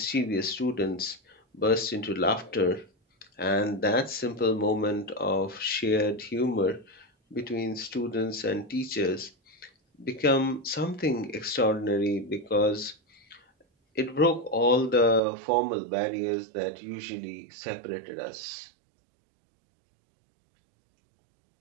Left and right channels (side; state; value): left; drops out; at 15.2 s